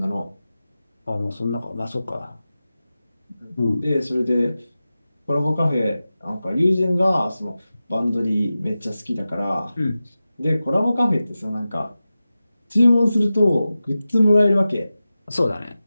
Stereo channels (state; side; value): inverted; both; correlation -0.94